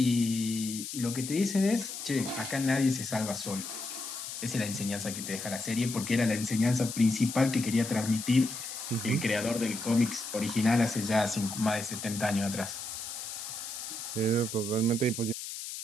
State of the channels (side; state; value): left; noise; hiss, 8 dB below the sound